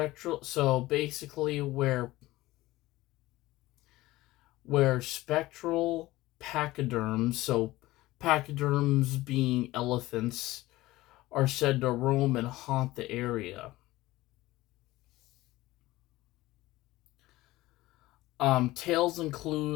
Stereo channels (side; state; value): right; quieter; 18.0 dB